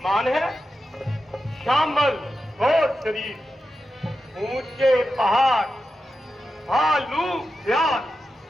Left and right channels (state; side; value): normal; both; correlation 0.90